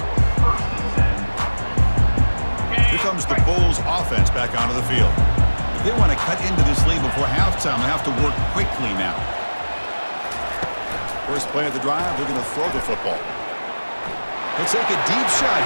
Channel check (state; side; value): inverted; both; correlation -1.00